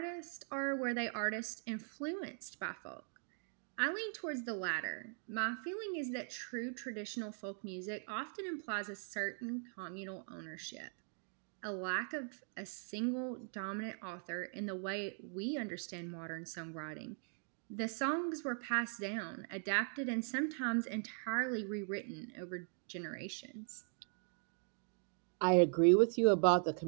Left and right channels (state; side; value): silent; left; 51 dB below the other